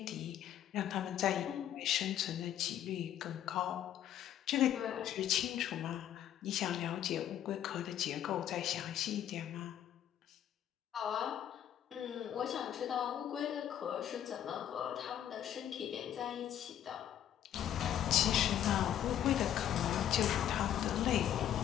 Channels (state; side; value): quieter; right; 10.8 dB